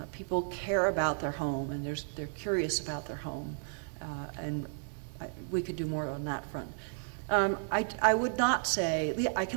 People care about their home, and they're curious about their home, and we could do more on that front. I would not say, I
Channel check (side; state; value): left; silent; digital silence